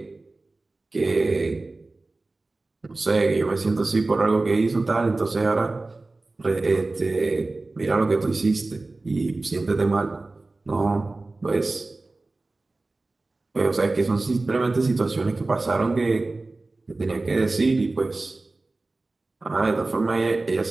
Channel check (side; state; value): left; quieter; 3.2 dB